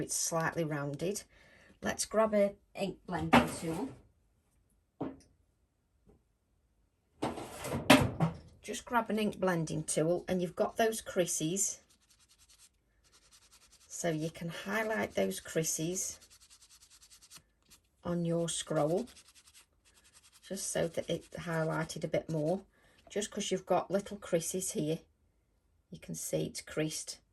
slightly rounded. Let's grab an ink blending tool. Just grab an ink blending tool, and you've got those creases, so you can highlight those creases on your scroll just so that it's highlighted a bit more. Just because you've got little creases here, you can see it's creased,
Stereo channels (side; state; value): both; identical; correlation 1.00